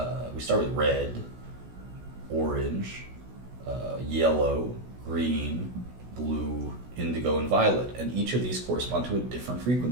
we start with red, orange, yellow, green, blue, indigo, and violet. And each of these correspond to a different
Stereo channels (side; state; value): left; late; 16 ms